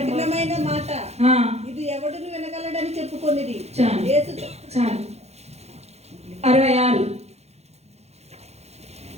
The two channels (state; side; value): late; left; 0.31 ms